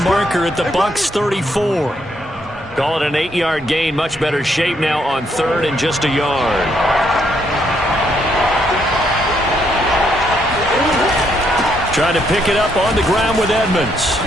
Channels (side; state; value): both; normal; correlation 0.74